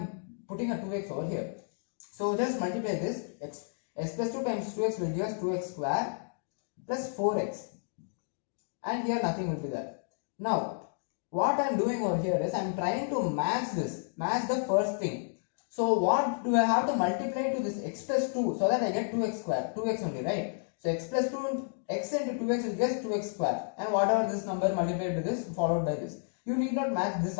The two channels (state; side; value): silent; right; digital silence